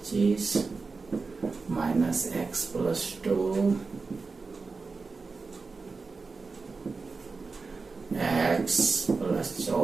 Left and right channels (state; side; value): quieter; left; 4.3 dB